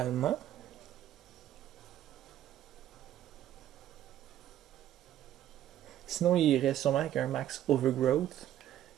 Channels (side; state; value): left; quieter; 11.9 dB